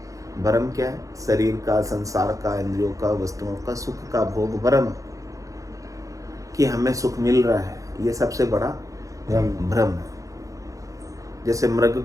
भरम क्या है? शरीर का, संसार का, इंद्रियों का, वस्तुओं का, सुख का भोग भरम, कि हमें सुख मिल रहा है, ये सबसे बड़ा भ्रम है। जैसे मृग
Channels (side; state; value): left; late; 0.16 ms